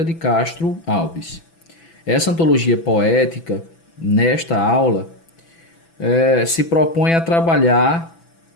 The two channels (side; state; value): right; late; 6.0 ms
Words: de Castro Alves. Essa antologia poética, nesta aula, se propõe a trabalhar